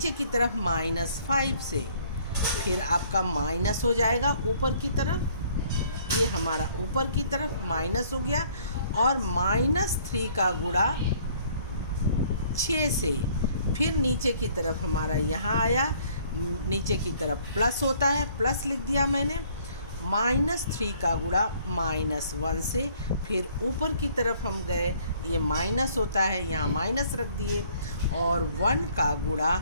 की तरफ -5 से, फिर आपका माइनस हो जाएगा ऊपर की तरफ, ये हमारा ऊपर की तरफ माइनस हो गया। और -3 का गुणा 6 से, फिर नीचे की तरफ हमारा यहाँ आया, नीचे की तरफ प्लस होता है, प्लस लिख दिया मैंने। -3 का गुणा -1 से, फिर ऊपर की तरफ हम गए, ये माइनस होता है, यहाँ माइनस रख दिए। और 1 का गुणा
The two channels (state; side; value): inverted; both; correlation -0.59